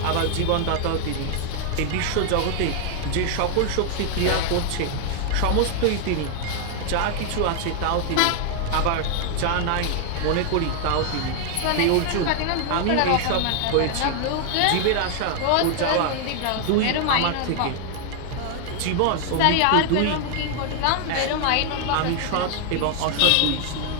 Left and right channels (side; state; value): both; different; correlation 0.00